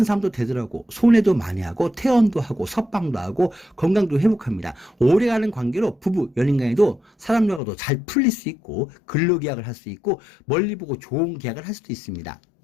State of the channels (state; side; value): drops out; right; at 7.6 s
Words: 사람도 되더라고 손해도 많이 하고 퇴원도 하고 석방도 하고 건강도 회복합니다. 오래가는 관계로 부부 연인간에도 사람들과도 잘 풀릴 수 있고 근로계약을 할 수 있고 멀리 보고 좋은 계약을 할 수도 있습니다.